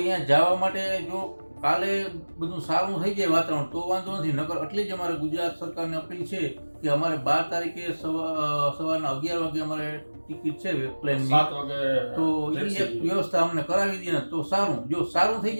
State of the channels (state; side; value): inverted; both; correlation -1.00